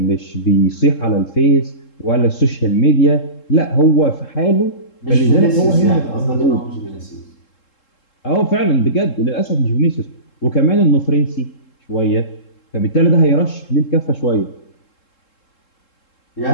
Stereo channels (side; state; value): right; late; 3.7 ms